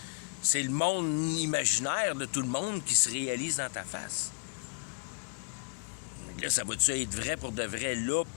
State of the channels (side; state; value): right; quieter; 35.2 dB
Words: C'est le monde imaginaire de tout le monde qui se réalise dans ta face. Là, ça va-tu être vrai pour de vrai, là,